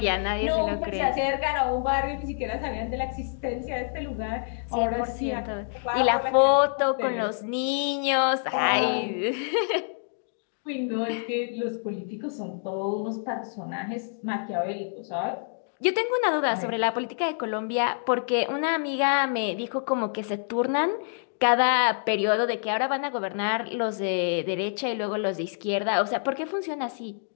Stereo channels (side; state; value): right; silent; digital silence